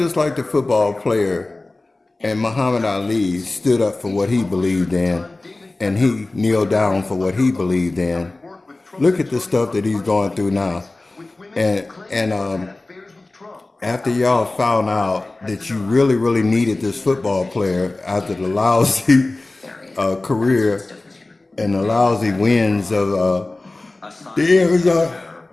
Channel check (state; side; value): quieter; right; 3.0 dB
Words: like the football player and Muhammad Ali stood up for what he believed in, and he kneeled down for what he believed in. Look at the stuff that he's going through now, and after y'all found out that you really needed this football player after the lousy career and the lousy wins of the